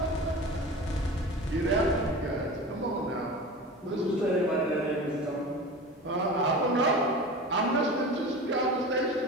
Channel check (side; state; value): both; normal; correlation 0.33